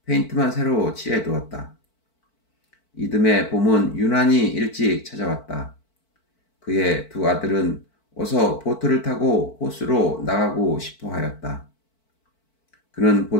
페인트만 새로 칠해 두었다. 이듬해 봄은 유난히 일찍 찾아왔다. 그의 두 아들은 어서 보트를 타고 호수로 나가고 싶어 하였다. 그는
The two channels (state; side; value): late; right; 4.5 ms